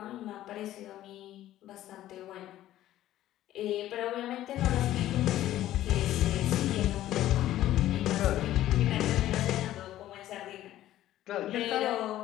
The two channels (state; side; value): quieter; right; 13.6 dB